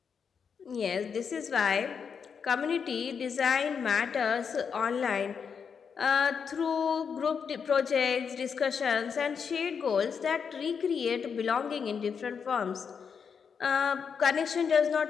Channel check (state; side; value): quieter; right; 6.5 dB